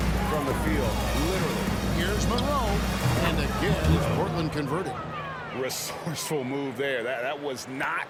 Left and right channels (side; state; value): both; identical; correlation 1.00